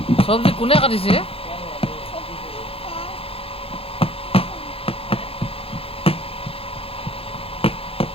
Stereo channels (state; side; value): late; right; 0.27 ms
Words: চব্জি কোনে কাটিছে?